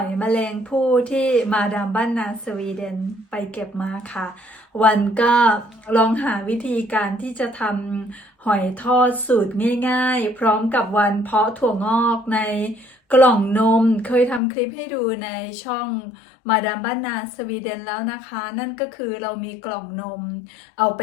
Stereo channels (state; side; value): drops out; right; at 14.4 s